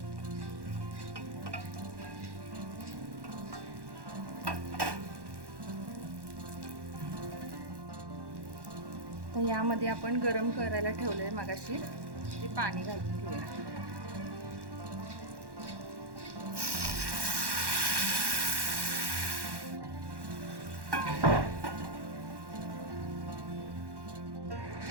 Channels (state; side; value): late; left; 1.1 ms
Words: तर यामध्ये आपण गरम करायला ठेवलंय मगाशी ते पाणी घालून घेऊया.